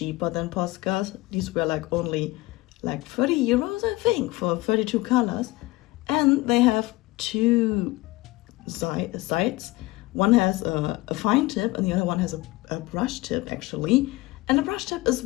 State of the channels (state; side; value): quieter; right; 20.4 dB